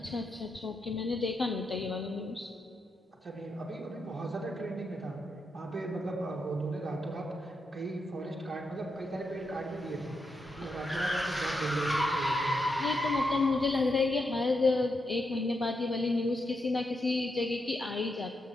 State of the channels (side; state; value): both; normal; correlation 0.83